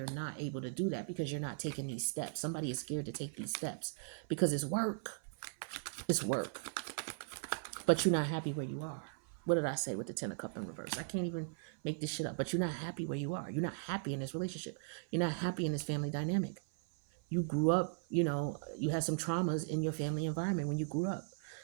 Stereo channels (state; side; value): silent; left; 52 dB below the other